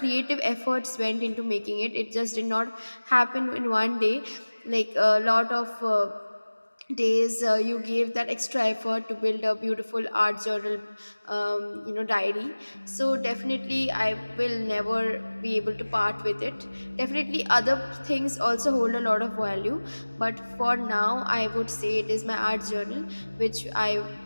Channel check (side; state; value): both; inverted; correlation -1.00